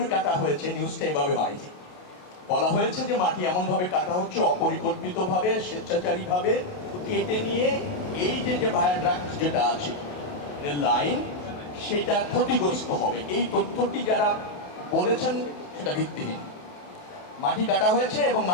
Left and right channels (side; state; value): right; late; 28 ms